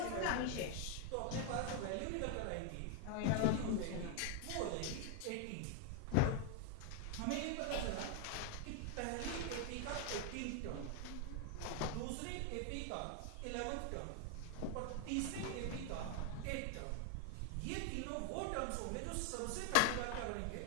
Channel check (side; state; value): both; different; correlation 0.00